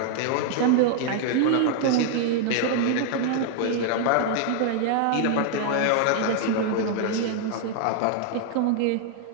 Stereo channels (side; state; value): both; different; correlation 0.00